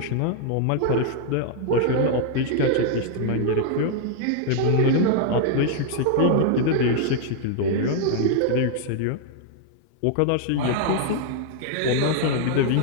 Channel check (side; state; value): both; different; correlation 0.00